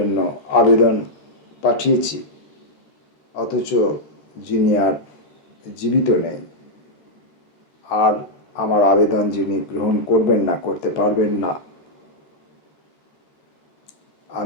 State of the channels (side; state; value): right; late; 13 ms